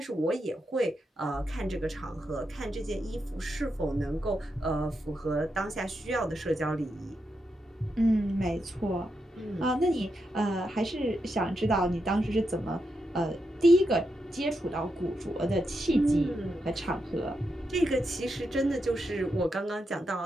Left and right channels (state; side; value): normal; both; correlation 0.84